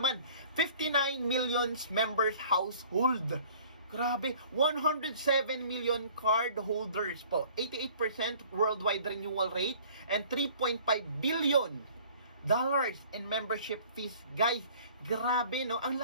59 million members household. Grabe, 107 million card holders po. 88% worldwide renewal rate and 3.5 billion dollars in membership fees. Guys, grabe, no? Ang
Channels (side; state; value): both; inverted; correlation -0.51